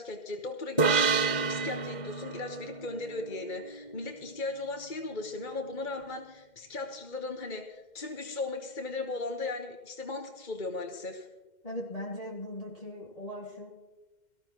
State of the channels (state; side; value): late; right; 2.1 ms